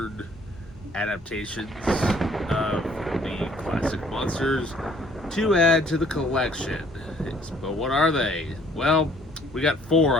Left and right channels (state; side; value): normal; both; correlation 0.59